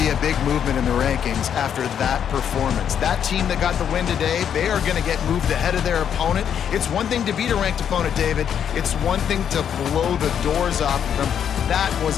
a big movement in the rankings after that performance. That team that got the win today, they are going to get moved ahead of their opponent. It's one thing to beat a ranked opponent, David. It's one thing to blow the doors off of them. That was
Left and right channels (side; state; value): right; quieter; 8.6 dB